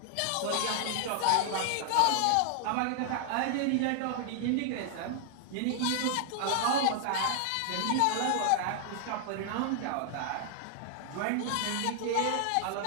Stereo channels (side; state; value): both; different; correlation 0.00